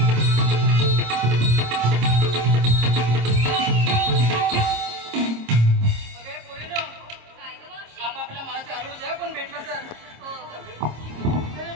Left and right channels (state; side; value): late; left; 26 ms